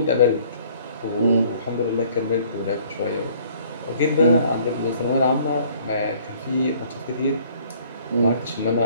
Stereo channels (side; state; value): both; inverted; correlation -0.57